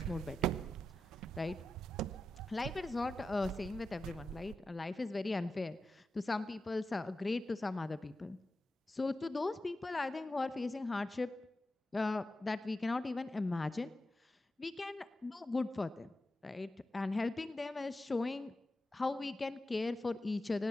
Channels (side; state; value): both; normal; correlation 0.91